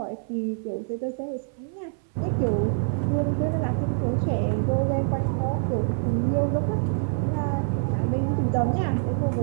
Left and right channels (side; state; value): left; silent; 61 dB below the other